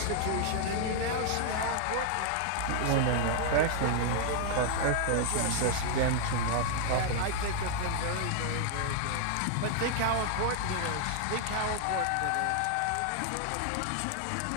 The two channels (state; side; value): different; both; correlation -0.01